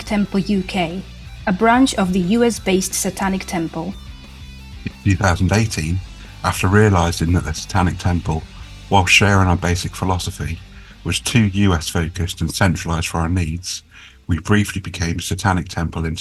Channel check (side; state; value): both; identical; correlation 1.00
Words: Temple UK, a branch of the US-based Satanic Temple. In 2018, after realising that the Satanic Temple, while sharing our basic philosophy, was too US-focused and centralised for our needs, we briefly became Satanic Temple